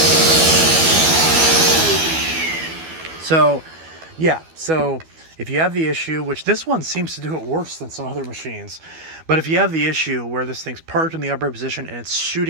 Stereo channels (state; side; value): late; left; 12 ms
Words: So, yeah, so if you have the issue, which this one seems to do it worse than some other machines, but if you have the issue where this thing's parked in the upright position and it's